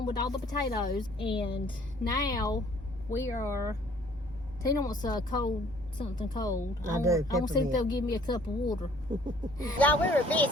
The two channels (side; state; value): both; normal; correlation 0.57